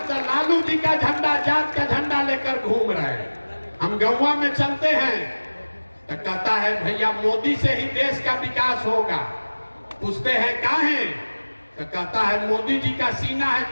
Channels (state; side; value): inverted; both; correlation -1.00